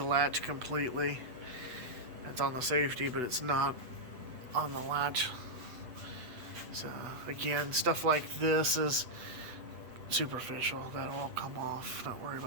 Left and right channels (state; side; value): late; left; 8.3 ms